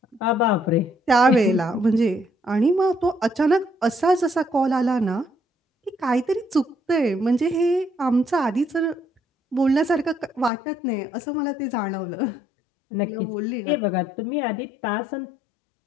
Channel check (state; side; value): drops out; right; at 10.5 s